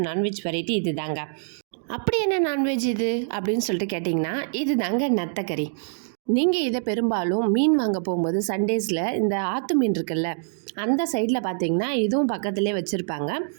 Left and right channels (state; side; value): silent; left; digital silence